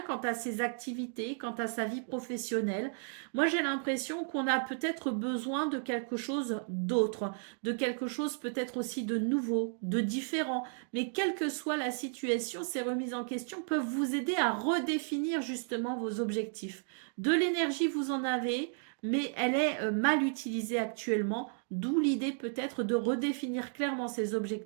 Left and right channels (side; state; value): left; silent; 55 dB below the other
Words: quant à ses activités, quant à sa vie professionnelle. Moi, j'ai l'impression qu'on a peut-être besoin de quelque chose d'autre, de quelque chose peut-être aussi de nouveau, de différent. Mais quelle que soit la situation, ces remises en question peuvent vous aider à redéfinir justement vos objectifs. De l'énergie, vous en avez, mais elle est mal utilisée actuellement, d'où l'idée peut-être de redéfinir clairement ses